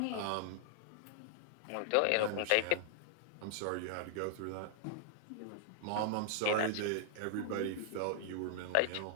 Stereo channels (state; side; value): different; both; correlation -0.01